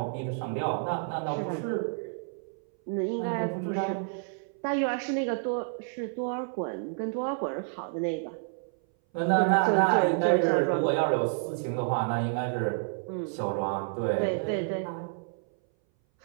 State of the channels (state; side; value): silent; left; 58 dB below the other